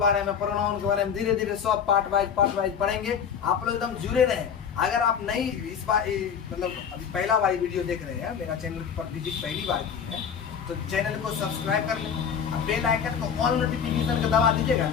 में, प्रोनाउन के बारे में धीरे धीरे सब पार्ट वाइज पढ़ेंगे। आप लोग एकदम जुड़े रहें। अगर आप नहीं इस बार मतलब अभी पहला वाली वीडियो देख रहे हैं, मेरा चैनल पर विजिट पहली बार की है, तो चैनल को सब्सक्राइब कर लें, बेल आइकन को ऑल नोटिफिकेशन का दबा दीजिएगा।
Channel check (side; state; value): right; quieter; 7.4 dB